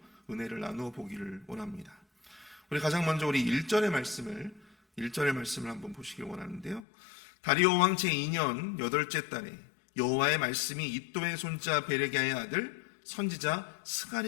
은혜를 나누어 보기를 원합니다. 우리 가장 먼저 우리 1절의 말씀을 한번 보시길 원하는데요. 다리오 왕 제2년 8째 달에 여호와의 말씀이 이도의 손자 베레기야의 아들 선지자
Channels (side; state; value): right; drops out; at 6.9 s